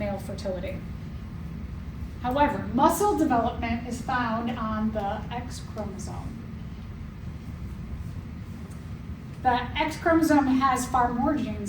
fertility. However, muscle development is found on the X chromosome. The X chromosome has far more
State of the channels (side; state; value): both; identical; correlation 1.00